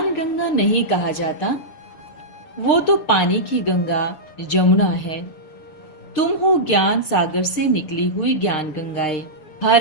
गंगा नहीं कहा जाता, वो तो पानी की गंगा जमुना है। तुम हो ज्ञान सागर से निकली हुई ज्ञान गंगाएं। हर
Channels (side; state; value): right; late; 6.9 ms